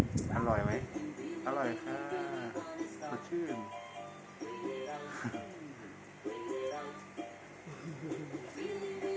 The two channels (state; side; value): identical; both; correlation 1.00